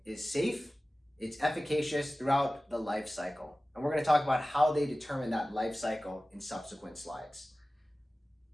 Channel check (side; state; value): both; normal; correlation 0.96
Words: is safe, it's efficacious throughout the life cycle. And we're going to talk about how they determine that life cycle in subsequent slides.